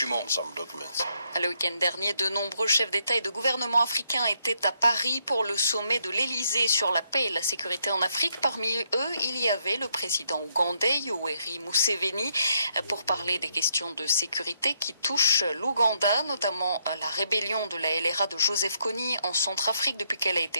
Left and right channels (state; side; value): inverted; both; correlation -0.74